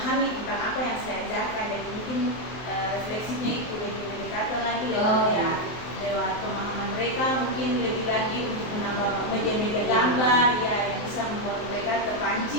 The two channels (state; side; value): late; right; 23 ms